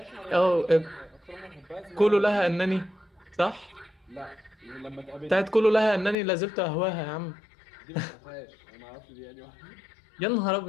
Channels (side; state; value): right; drops out; at 6.2 s